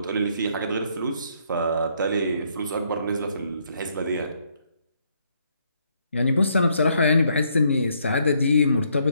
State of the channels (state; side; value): inverted; both; correlation -0.71